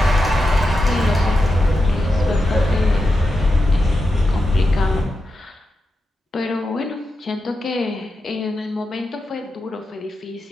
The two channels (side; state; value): both; normal; correlation 0.89